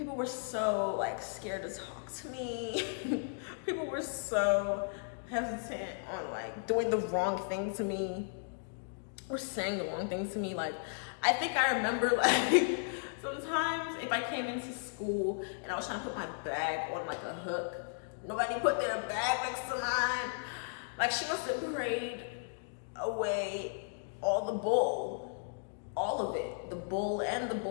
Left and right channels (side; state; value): right; silent; digital silence